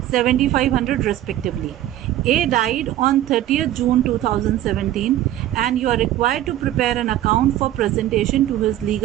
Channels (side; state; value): left; quieter; 13.2 dB